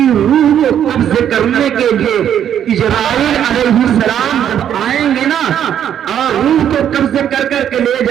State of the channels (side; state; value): left; quieter; 9.7 dB